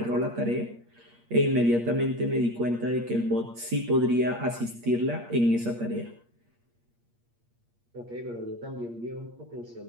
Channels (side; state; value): left; late; 8.5 ms